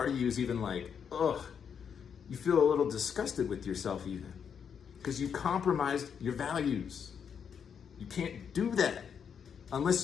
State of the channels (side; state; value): right; quieter; 7.3 dB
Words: of you is even like, ugh, you feel a little disgusted with yourself even, because you compromised your values. You can't do that. Unless